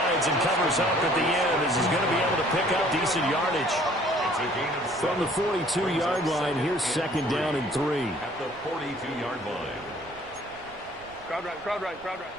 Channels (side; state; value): right; noise; rumble, 24 dB below the sound